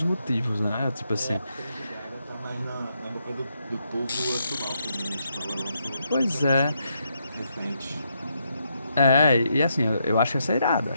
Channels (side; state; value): both; inverted; correlation -0.79